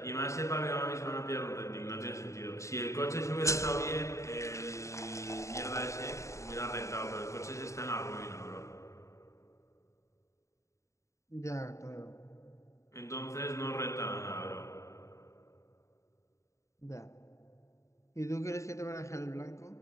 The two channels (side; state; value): right; late; 0.14 ms